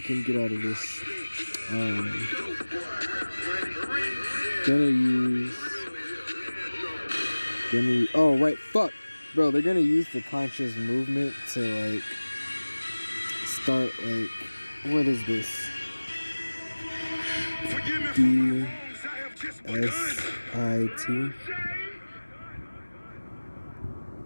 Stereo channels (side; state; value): both; inverted; correlation -1.00